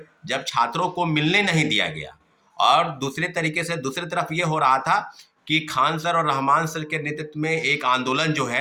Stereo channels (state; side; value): identical; both; correlation 1.00